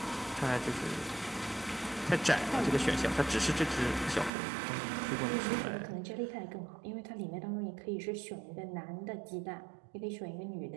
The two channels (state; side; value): drops out; left; at 4.3 s